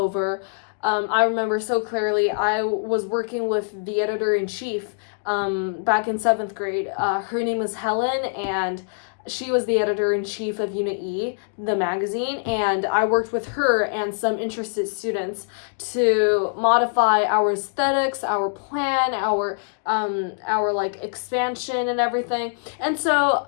I remember so clearly, I was working with the editor-in-chief back in 7th grade. Her name is Helen, and she was the editor-in-chief of Unit E, the magazine, and I worked with her and some interested students to modify our aesthetics, our plan, our like expansion and everything. And so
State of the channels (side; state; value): right; silent; digital silence